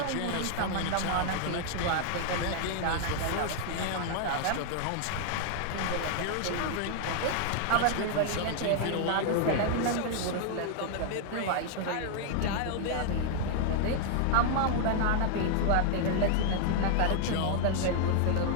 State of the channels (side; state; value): both; different; correlation 0.00